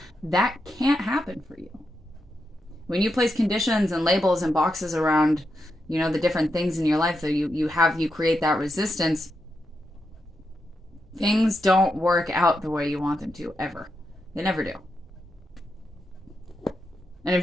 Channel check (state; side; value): normal; both; correlation 0.85